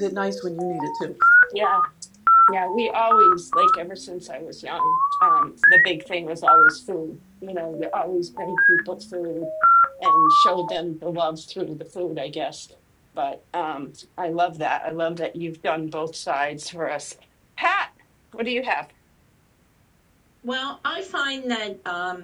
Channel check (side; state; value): both; identical; correlation 1.00